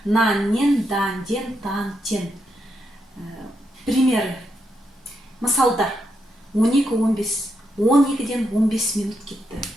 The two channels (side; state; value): both; normal; correlation 0.81